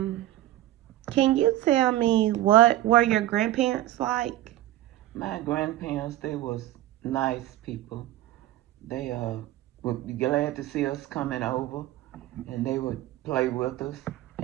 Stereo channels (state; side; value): quieter; left; 14.7 dB